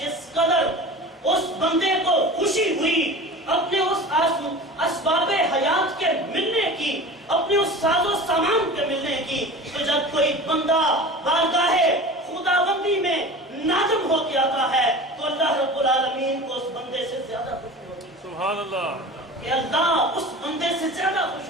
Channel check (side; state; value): both; normal; correlation 0.35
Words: قدر اس بندے کو خوشی ہوئی اپنے اس اسباب حیات کے ملنے کی، اپنے اس ساز و سامان کے ملنے کی، تو جب کوئی بندہ بارگاہ خداوندی میں نادم ہو کے آتا ہے تو اللہ رب العالمین کو اس بندے سے زیادہ خوشی ہوتی ہے۔ سبحان اللہ، کہ اللہ اس بندے سے زیادہ